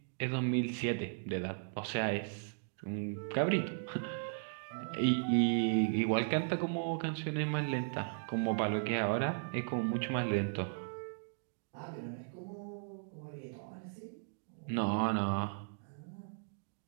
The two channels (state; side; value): silent; left; digital silence